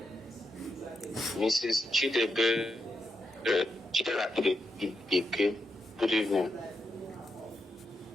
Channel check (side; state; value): both; normal; correlation 0.85